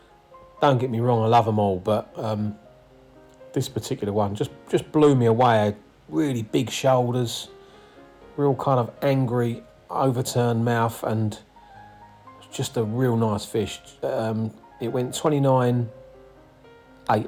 don't get me wrong, I love them all, but this particular one just blew me away. Really big shoulders, real kind of angry overturned mouth, and just a real nice fish. It went 29.8,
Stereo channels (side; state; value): both; identical; correlation 1.00